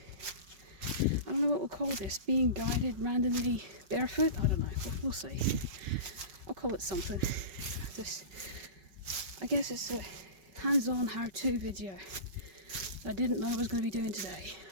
don't know what we'll call this, being guided randomly barefoot, I don't know, we'll see. I'll call it something. I guess it's a hands-on how-to video that I didn't know I was going to be doing today.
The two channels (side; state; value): left; late; 5.3 ms